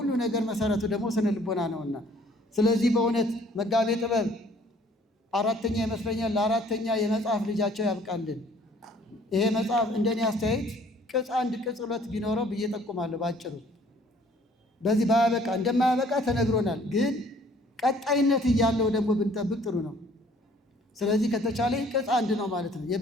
ነገር መሰረቱ ደግሞ ስነ ልቦና ነውና፣ ስለዚህ በእውነት መጋቤ ጥበብ አራተኛ ይመስለኛል ለአራተኛ የመጽሐፍ ልጃቸው ያብቃልን። ይሄ መጽሐፍ እንደኔ አስተያየት ቅጽ 1 ቅጽ 2 ቢኖረው ብዬ ጠቁማለሁ። ባጭሩ በዚህ ባያበቃ እንደማያበቃ ተነግሮናል፣ ግን ቀጣይነት እያለው ደግሞ ብንጠብቅ ጥሩ ነው። ስለዚህ ከተቻለ ቅጽ 1 ነው ማለት ነው፣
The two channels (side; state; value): both; normal; correlation 0.57